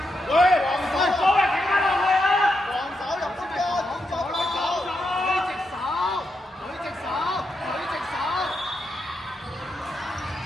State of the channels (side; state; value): both; normal; correlation 0.84